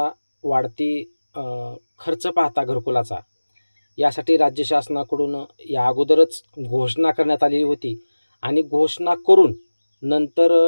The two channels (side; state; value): both; inverted; correlation -1.00